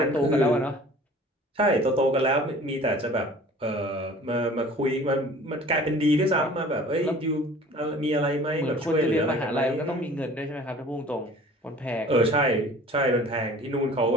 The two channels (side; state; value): both; normal; correlation 0.47